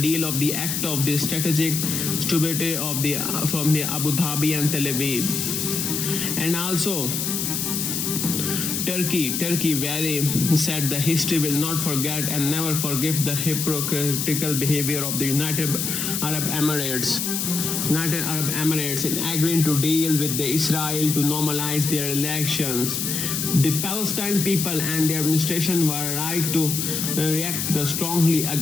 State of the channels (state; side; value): noise; left; hiss, 1 dB below the sound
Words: of the act of the strategic stability from the Abu Dhabi and Tel Aviv. And also Turkey very said the history will not forget and never forgive the hypocritical behavior of the United Arab Emirates in agreeing to deal with the Israel to normalize their relations. The Palestine people and their administration were right to react strongly